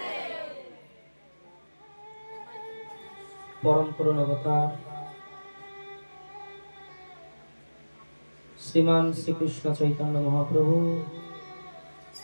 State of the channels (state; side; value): inverted; both; correlation -1.00